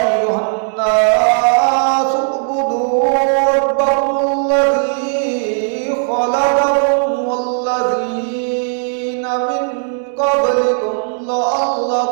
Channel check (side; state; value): left; silent; digital silence